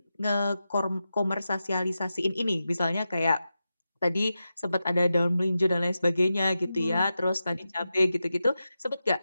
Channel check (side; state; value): both; inverted; correlation -0.91